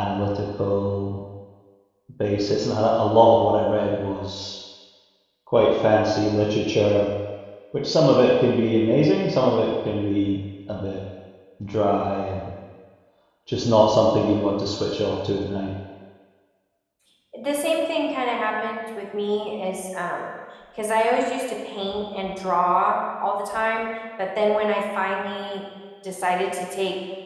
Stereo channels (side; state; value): both; identical; correlation 1.00